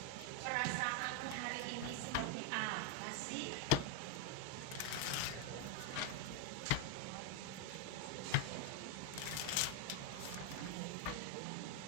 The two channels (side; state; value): both; different; correlation 0.01